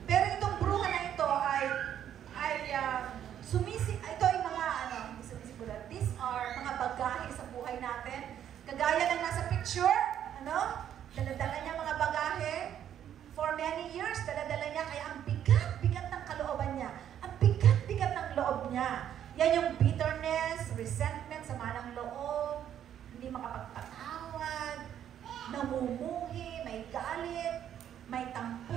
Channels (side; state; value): left; quieter; 10.1 dB